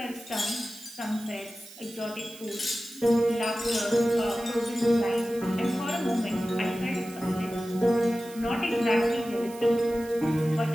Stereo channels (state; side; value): noise; right; hiss, 18 dB below the sound